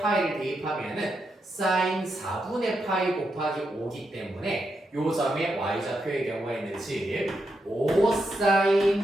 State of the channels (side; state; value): both; normal; correlation 0.83